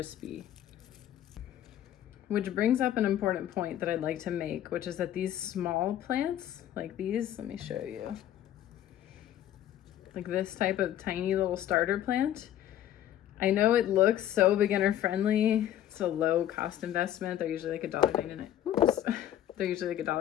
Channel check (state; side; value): quieter; right; 11.7 dB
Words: Which brings up an important point that I'd like to make, which is that these small plants, like these, let me show you. Like this type of tiny little starter plant, I know it looks so beginner friendly. It's a low cost investment. They're usually like $1.99. Oops. They're usually like